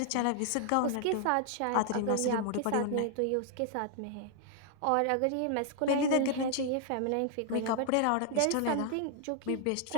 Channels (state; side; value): different; both; correlation 0.00